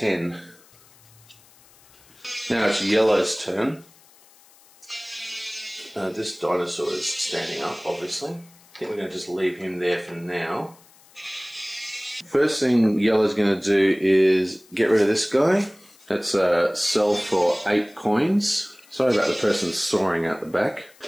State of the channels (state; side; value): noise; left; hiss, 27 dB below the sound